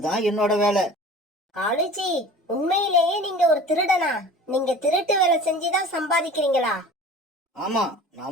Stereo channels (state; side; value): normal; both; correlation 0.41